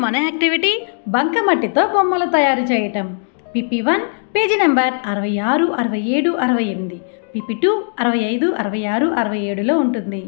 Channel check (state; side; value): silent; right; digital silence